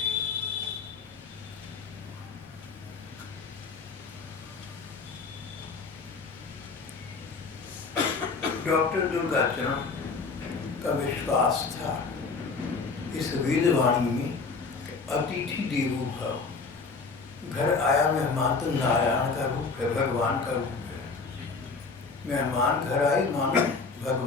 डॉक्टर दुर्गा चरण का विश्वास था इस वेदवाणी में, अतिथि देवो भव। घर आया मेहमान तो नारायण का रूप है, भगवान का रूप है। मेहमान घर आए मानो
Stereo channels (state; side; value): quieter; right; 4.5 dB